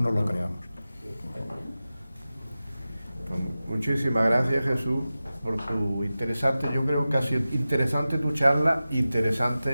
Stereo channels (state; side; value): inverted; both; correlation -0.95